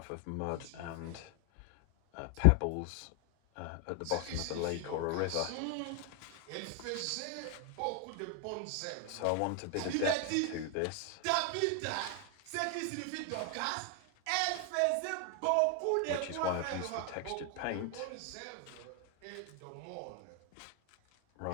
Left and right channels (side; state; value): both; different; correlation 0.01